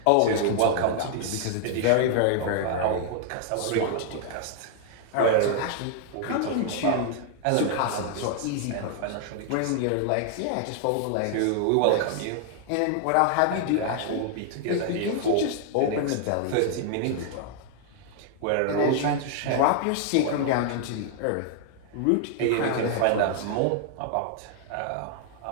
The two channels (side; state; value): both; different; correlation 0.00